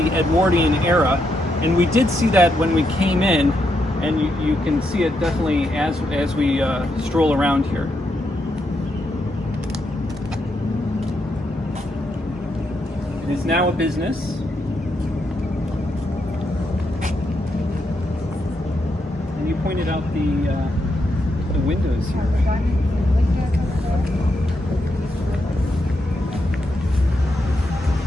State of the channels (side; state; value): both; normal; correlation 0.81